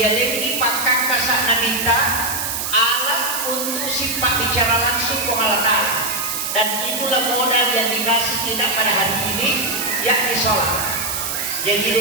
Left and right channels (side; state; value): right; noise; hiss, 3 dB below the sound